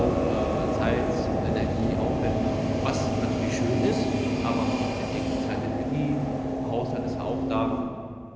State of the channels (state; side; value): identical; both; correlation 1.00